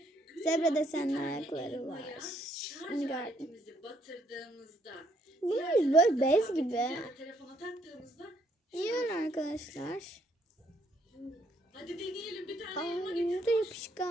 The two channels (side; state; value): both; normal; correlation 0.70